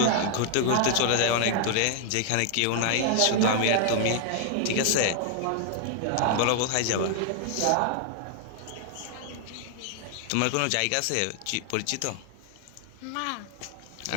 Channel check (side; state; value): both; different; correlation 0.00